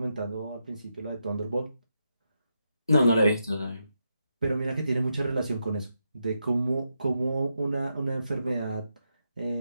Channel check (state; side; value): inverted; both; correlation -0.84